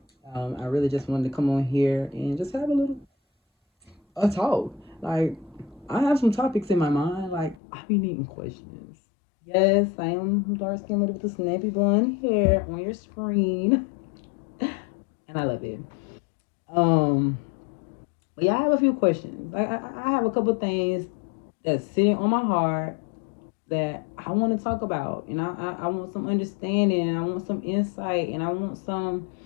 I really just wanted to come on here and just have a little a talk. Like, I have some topics in my mind. Like, I be needing questions. Yes, I am dark skinned lady with the snappy blonde hair on your screen, and I love it. Um, But yeah, I have a few questions. I have a couple things that's sitting on my heart that I want to talk about, and I want some understanding, and I want some insight, and I want some,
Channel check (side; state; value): right; drops out; at 7.6 s